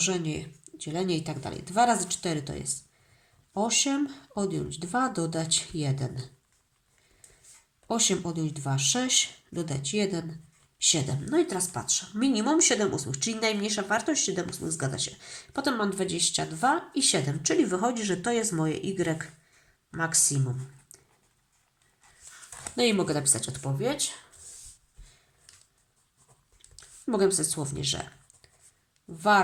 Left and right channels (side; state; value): both; identical; correlation 1.00